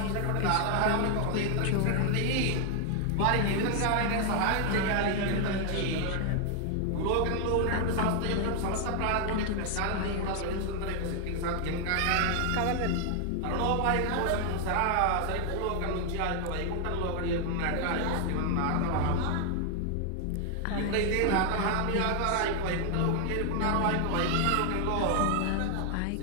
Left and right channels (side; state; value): both; different; correlation 0.00